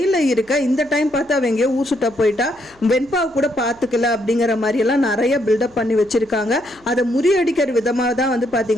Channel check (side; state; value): right; noise; hum, 29 dB below the sound